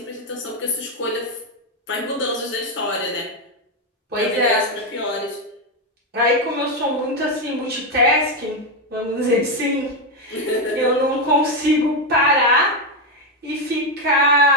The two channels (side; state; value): both; normal; correlation 0.07